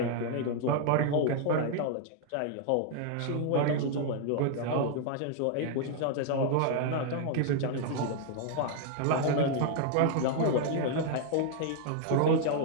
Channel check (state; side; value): different; both; correlation 0.00